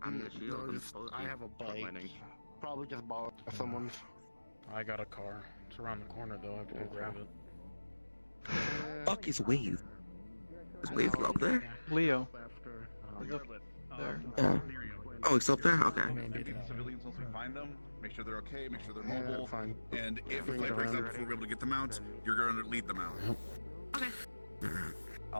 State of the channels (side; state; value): both; inverted; correlation -1.00